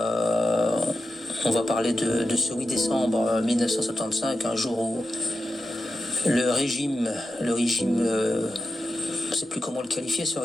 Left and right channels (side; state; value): both; normal; correlation 0.91